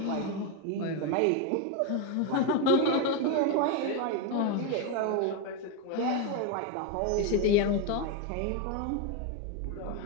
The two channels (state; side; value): different; both; correlation 0.02